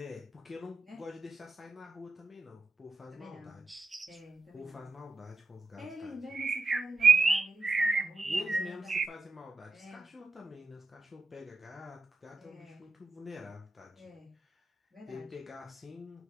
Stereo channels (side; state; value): left; quieter; 3.4 dB